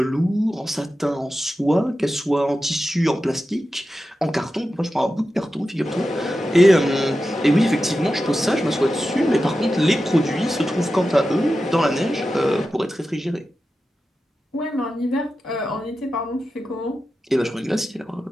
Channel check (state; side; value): normal; both; correlation 0.92